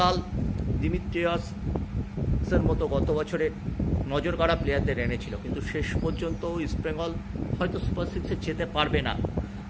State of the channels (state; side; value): identical; both; correlation 1.00